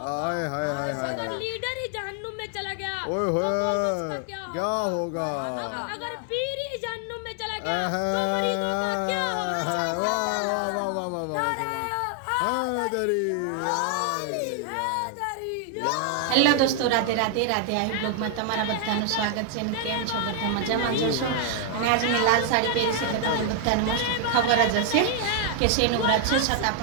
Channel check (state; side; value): different; both; correlation 0.00